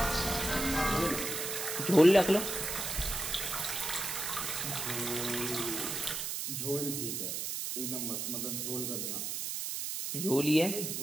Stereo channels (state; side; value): noise; right; hiss, 3 dB below the sound